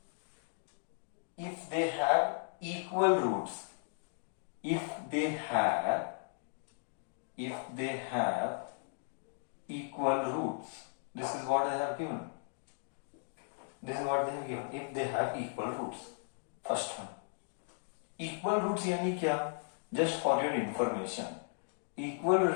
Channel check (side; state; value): right; silent; digital silence